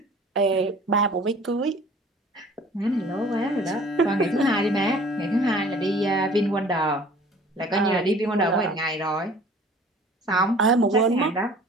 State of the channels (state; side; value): normal; both; correlation 0.49